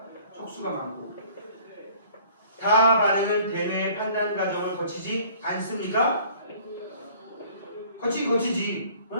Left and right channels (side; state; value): both; inverted; correlation -0.53